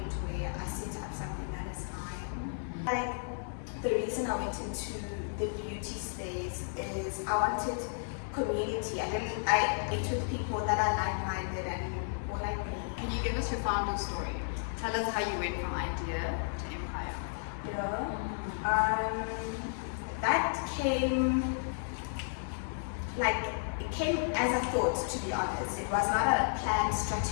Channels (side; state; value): right; silent; digital silence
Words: where I set up something that is mine. Like, the reason I went into the beauty space is I wanted community. I ate with people that are like-minded and more like me. Can you give us your founder story? Tell us how you went from idea to empire. That came, like, it came as a thought, to be honest. It was not a planned